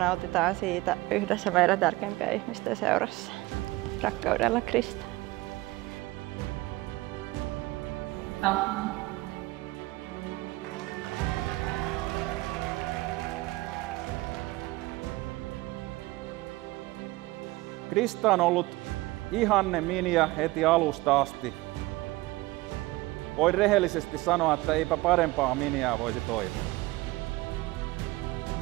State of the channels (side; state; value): left; quieter; 20.1 dB